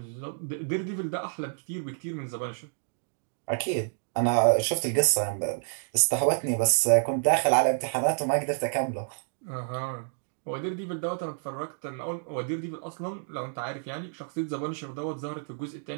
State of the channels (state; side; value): silent; left; digital silence